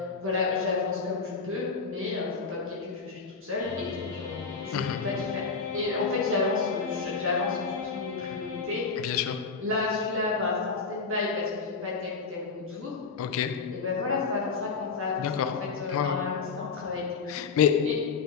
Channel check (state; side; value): quieter; right; 4.9 dB